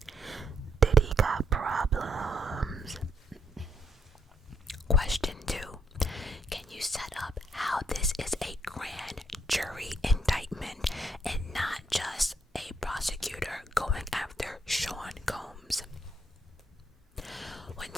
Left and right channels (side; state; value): both; normal; correlation 0.72